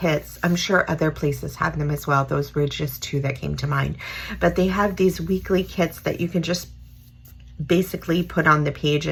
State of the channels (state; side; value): identical; both; correlation 1.00